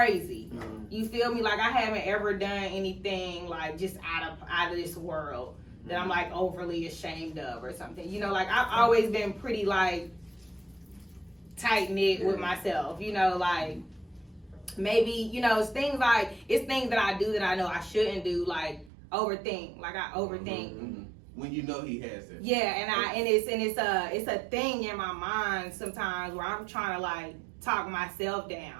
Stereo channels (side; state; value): left; drops out; at 18.9 s